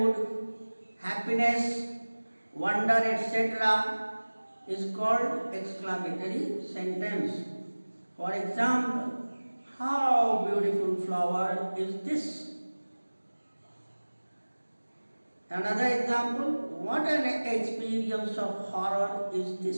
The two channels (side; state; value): both; inverted; correlation -1.00